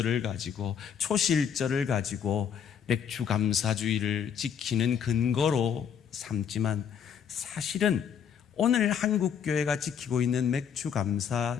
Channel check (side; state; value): right; quieter; 7.8 dB